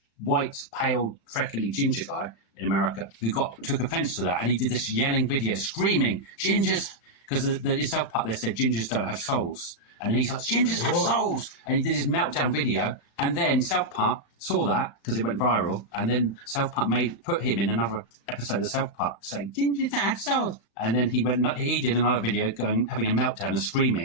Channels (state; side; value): late; right; 35 ms